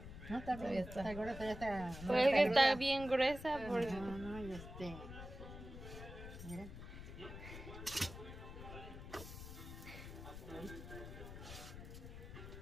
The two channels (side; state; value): left; noise; rumble, 11 dB below the sound